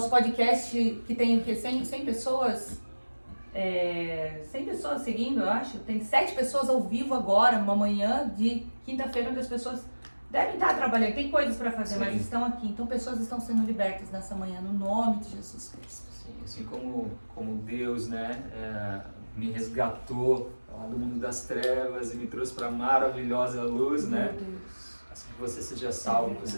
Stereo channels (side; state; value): both; inverted; correlation -1.00